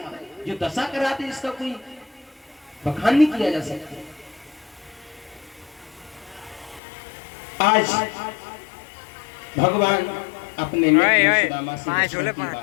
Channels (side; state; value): right; drops out; at 6.8 s